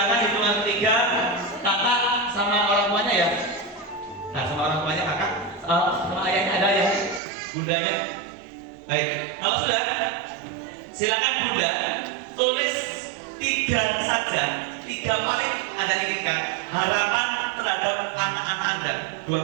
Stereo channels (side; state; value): left; drops out; at 7.2 s